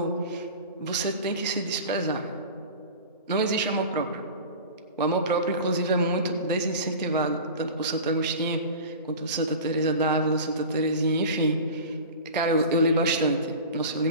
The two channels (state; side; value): inverted; both; correlation -0.35